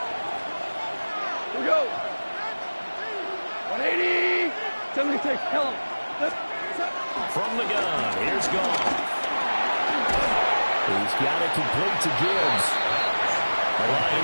Here we go. 180. Somebody take help. From the gun, here's Goff. He's got it complete to Gibbs. The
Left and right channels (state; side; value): inverted; both; correlation -1.00